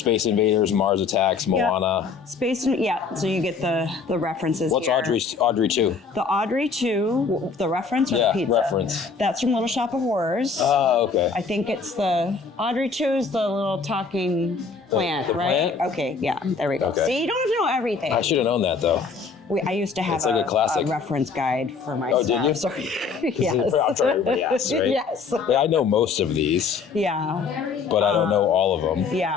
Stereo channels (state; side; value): quieter; right; 5.0 dB